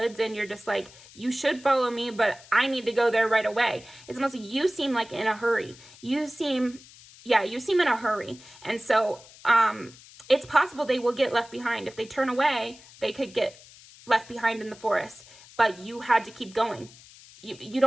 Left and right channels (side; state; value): left; noise; hiss, 21 dB below the sound